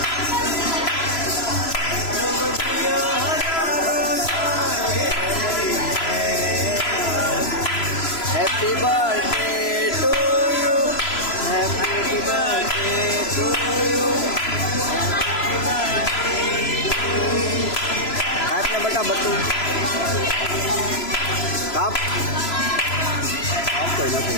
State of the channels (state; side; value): late; right; 3.0 ms